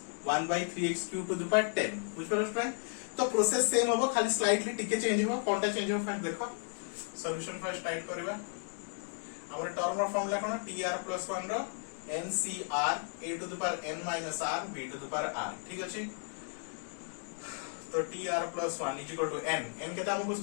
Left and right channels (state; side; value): silent; right; 55 dB below the other